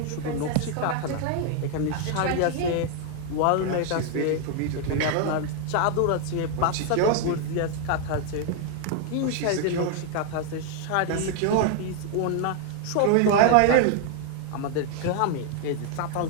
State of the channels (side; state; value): both; different; correlation 0.00